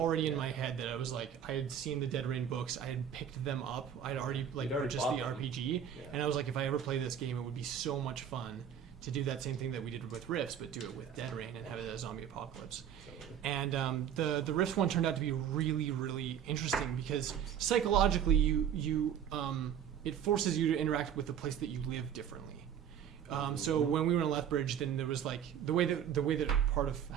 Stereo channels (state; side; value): quieter; left; 9.0 dB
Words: in Yeah. my head that I was like, I had seen the Dead Rain books, I had picked them up, I'd already like You'd already purchased bought the them. RPG, Yeah. and I was like, if I ever play this game, it would be so much fun to do that same thing that we did with Rifts, but do it with Dead Rain and have it as a zombie apocalypse. Totally. And the Rifts one turned out to be really, really interesting because psychologically, it forces you to interact with the place that you live differently. So when we were in Lethbridge, then there was like the way that part of